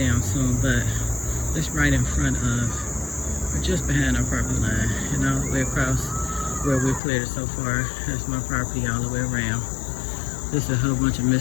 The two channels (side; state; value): right; drops out; at 7.0 s